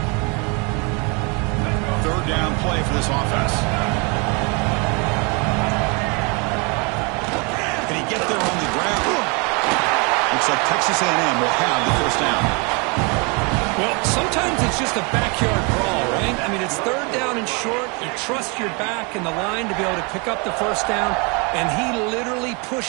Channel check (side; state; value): left; quieter; 31.7 dB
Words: 3rd down play for this offense. Can he get there on the ground? Looks like Texas A&M will have the 1st down. Well, sometimes it's just a backyard brawl, right? I mean, it's 3rd down and short. You trust your back and the line to be able to pick up the 1st down, and he literally